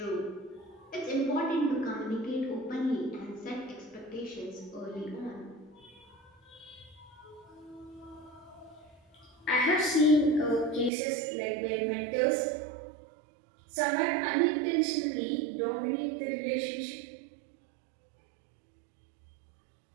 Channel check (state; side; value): drops out; left; at 10.9 s